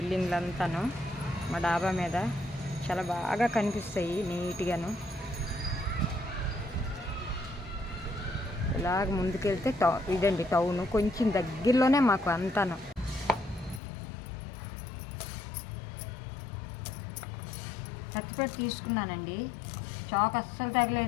అంతాను. మా డాబా మీద చాలా బాగా కనిపిస్తాయి నీట్గాను. ఇలాగ ముందుకెళ్తే ఇదండి టౌన్, కొంచెం దగ్గరలోనే మాకు అంతాను. కత్తిపెట్టి తీసుకున్నానండి, చాకు అస్సలు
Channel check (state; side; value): drops out; right; at 13.8 s